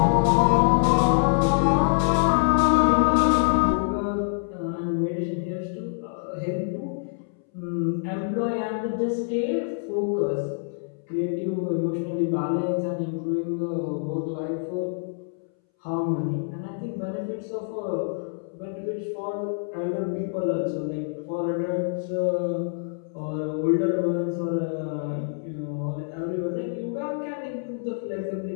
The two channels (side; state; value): right; silent; 61 dB below the other